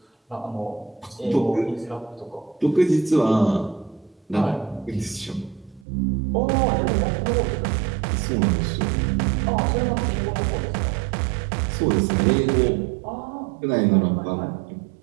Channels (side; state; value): left; drops out; at 5.9 s